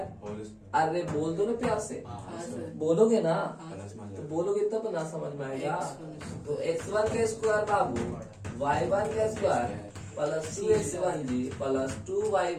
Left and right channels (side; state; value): both; identical; correlation 1.00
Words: अरे बोल दो ना प्यार से, बोलोगे ना तो बोलोगे तब ना समझ में आएगा। तो x1 का स्क्वायर बाबू y1 का square plus 2x1g plus